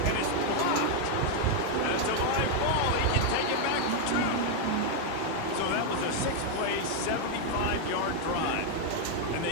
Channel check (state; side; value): different; both; correlation 0.00